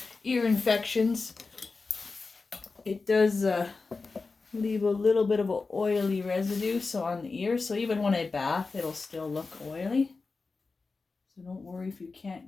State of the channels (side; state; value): right; quieter; 4.1 dB